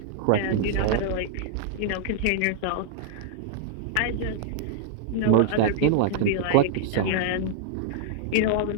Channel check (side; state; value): both; different; correlation -0.01